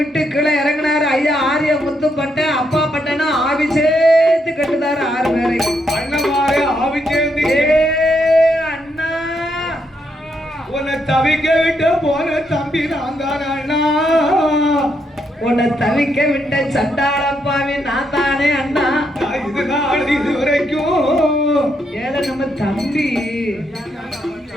கீழே இறங்கினாரு ஐயா ஆரிய முத்துப்பட்ட. அப்பா பட்டனா ஆவி சேர்த்து கட்டுதாரு 6 பேரை. அண்ணமாரே ஆவி சேர்ந்து. அண்ணா உன்னை தவிக்க விட்டு போன தம்பி நான் தானே அண்ணா. உன்னை தவிக்க விட்ட சண்டாளப்பாவி நான் தானே அண்ணா. இது நாள் இது வரைக்கும் ஏல நம்ம தம்பி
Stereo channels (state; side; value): normal; both; correlation 0.78